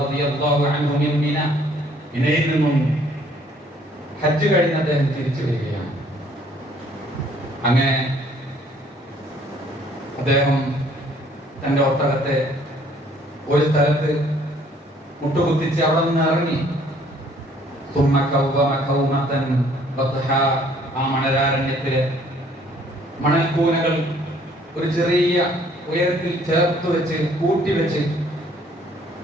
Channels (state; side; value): normal; both; correlation 0.60